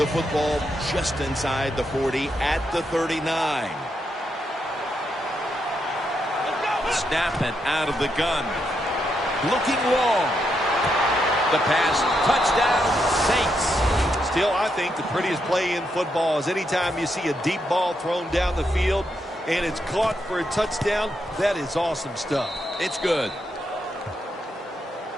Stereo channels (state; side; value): normal; both; correlation 0.81